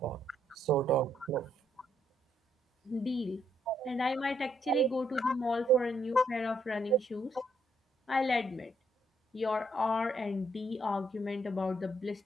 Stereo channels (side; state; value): both; normal; correlation 0.73